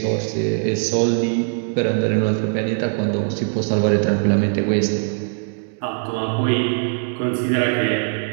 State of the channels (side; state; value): left; silent; 65 dB below the other